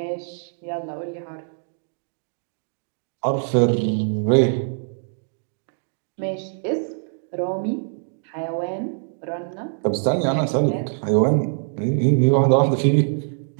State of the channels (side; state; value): left; silent; digital silence